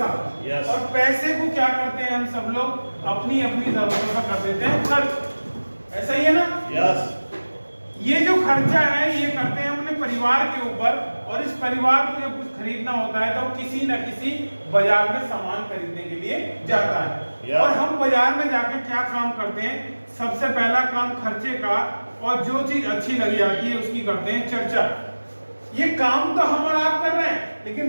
और पैसे को क्या करते हैं हम सब लोग अपनी अपनी जरूरतों का कर देते हैं खर्च। ऐसा ही है ना? यस। ये जो खर्चा है ये करते हैं अपने परिवार के ऊपर। और इस परिवार को जब कुछ खरीदना होता है तो किसी न किसी बाजार में सामान खरीदने के लिए जाता है। और हम बाजार में जाकर क्या काम करते हैं? सबसे पहला काम खर्चे का, और जो चीज अच्छी लग जाती है उसकी करते हैं चर्चा। ये काम तो हम और आप कर रहे हैं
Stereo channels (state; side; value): inverted; both; correlation -1.00